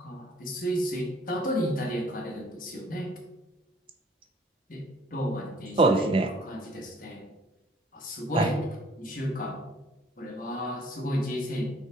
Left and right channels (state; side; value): normal; both; correlation 0.57